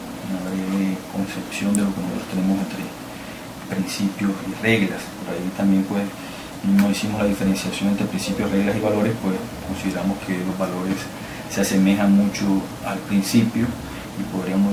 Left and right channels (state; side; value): identical; both; correlation 1.00